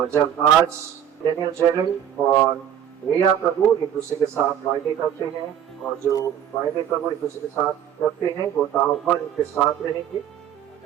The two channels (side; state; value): left; quieter; 9.6 dB